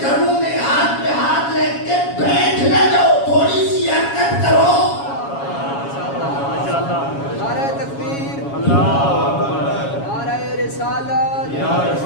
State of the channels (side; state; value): right; late; 7.2 ms